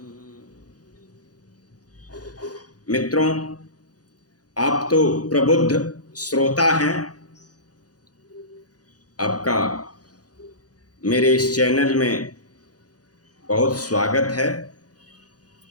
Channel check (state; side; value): late; right; 0.68 ms